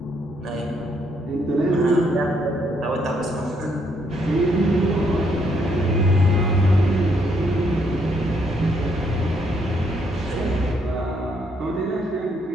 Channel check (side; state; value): both; normal; correlation 0.72